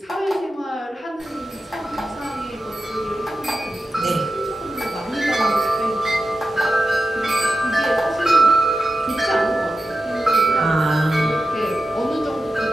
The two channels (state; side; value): normal; both; correlation 0.92